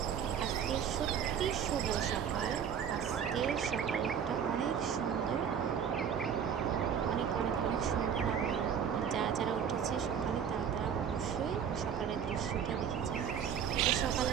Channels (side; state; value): left; quieter; 7.9 dB